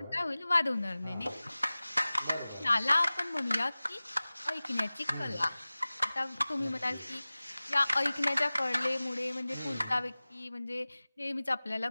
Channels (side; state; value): both; inverted; correlation -0.98